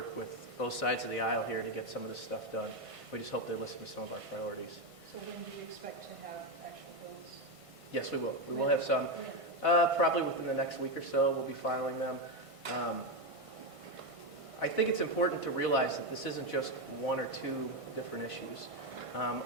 with both sides of the aisle here to get some of this stuff done. We just hope they listen to some of our priorities. So when do you expect to have actual bills? Yes, we will. We will have some. Probably within the next week or so, we'll be filing them. I think it's important to realize that this isn't just 1 or 2 different issues.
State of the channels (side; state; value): left; late; 1.5 ms